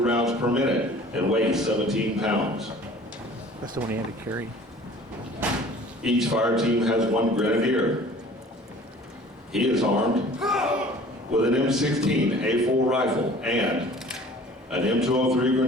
per minute and weighs 17 pounds. That's the one he had to carry. Each fire team has 1 grenadier. He is armed with an M16 A4 rifle and an M203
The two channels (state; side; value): normal; both; correlation 0.48